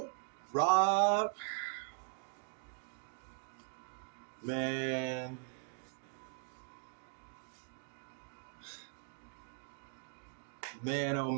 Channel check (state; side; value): silent; left; 51 dB below the other